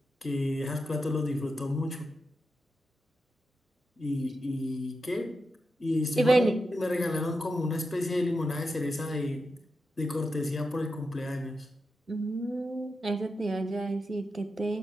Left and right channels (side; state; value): both; normal; correlation 0.88